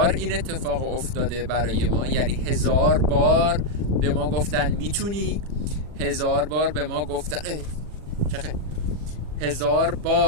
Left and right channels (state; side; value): late; left; 40 ms